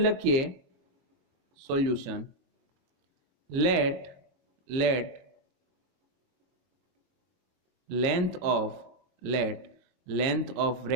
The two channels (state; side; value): late; left; 22 ms